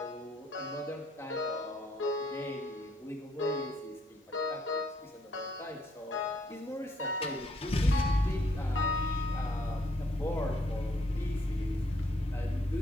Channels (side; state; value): both; normal; correlation 0.69